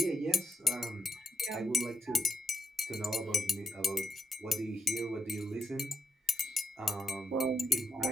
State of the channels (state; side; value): normal; both; correlation 0.84